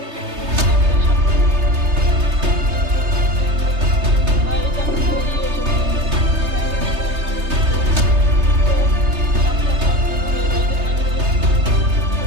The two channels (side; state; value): left; late; 3.3 ms